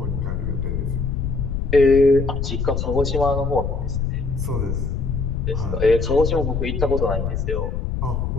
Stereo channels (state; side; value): noise; left; rumble, 2 dB below the sound